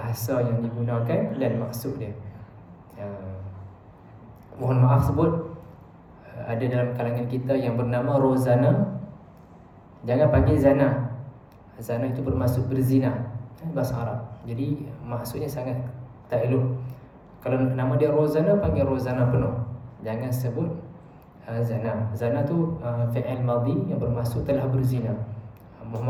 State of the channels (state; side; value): identical; both; correlation 1.00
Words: yang digunakan dan maksud dia. Mohon maaf sebut, ada dalam kalangan kita yang bernama Rozana. Jangan panggil Zana. Zana itu bermaksud berzina, bahasa Arab. Jadi maksudnya sangat tak elok. Kalau nama dia Rozana, panggil Rozana penuh. Jangan sebut Zana. Zana tu fi'il madhi yang bermaksud telah berzina. Mohon